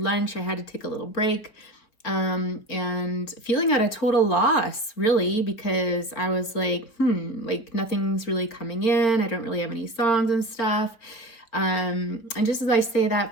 I had to take a little break and feeling at a total loss, really, because I was like nothing's really coming in. I don't really have any songs and stuff. And just as I say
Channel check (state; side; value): late; right; 4.4 ms